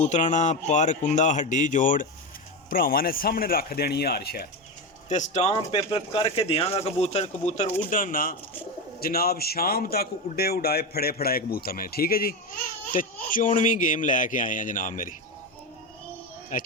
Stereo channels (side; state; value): both; normal; correlation 0.16